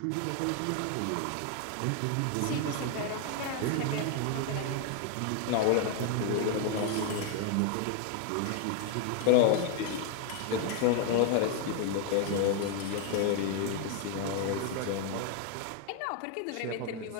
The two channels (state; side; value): different; both; correlation 0.00